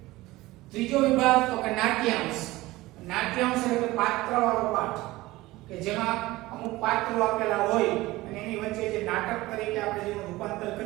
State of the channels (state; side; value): quieter; left; 18.9 dB